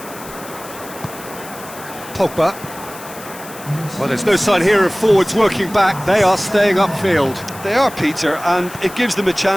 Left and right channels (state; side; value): noise; left; hiss, 16 dB below the sound